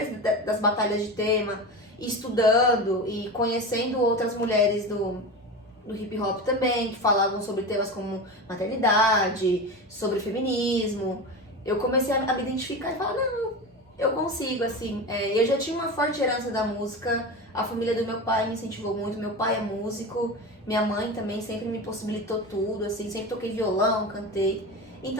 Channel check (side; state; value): both; normal; correlation 0.25